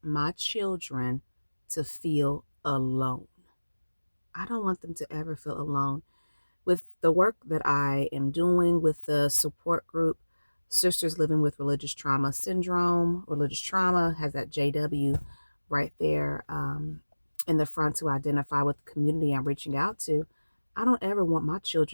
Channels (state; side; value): inverted; both; correlation -1.00